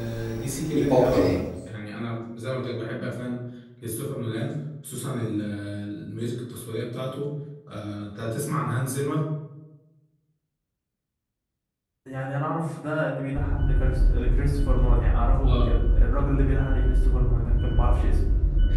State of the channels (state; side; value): identical; both; correlation 1.00